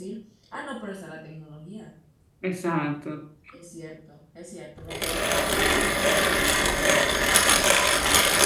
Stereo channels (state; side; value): identical; both; correlation 1.00